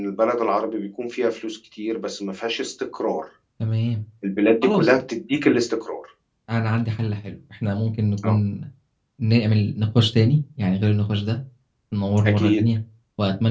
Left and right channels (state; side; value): identical; both; correlation 1.00